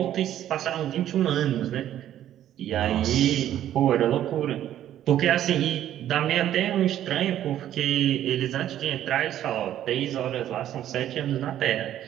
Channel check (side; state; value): left; quieter; 11.7 dB